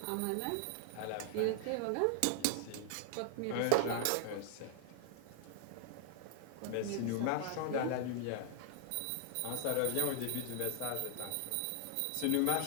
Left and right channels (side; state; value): both; different; correlation 0.00